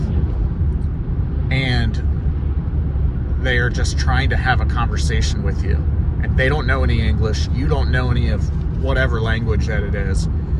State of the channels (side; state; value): both; identical; correlation 1.00